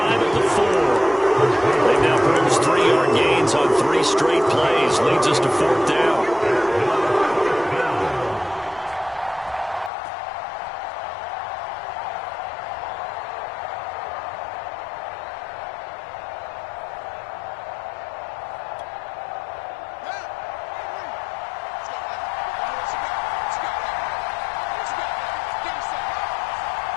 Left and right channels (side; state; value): right; drops out; at 9.9 s